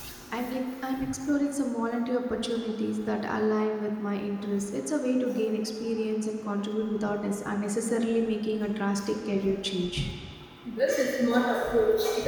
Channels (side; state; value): both; identical; correlation 1.00